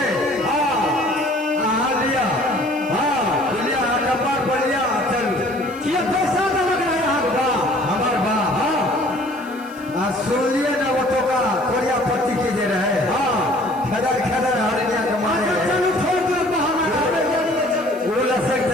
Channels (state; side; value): noise; right; hiss, 25 dB below the sound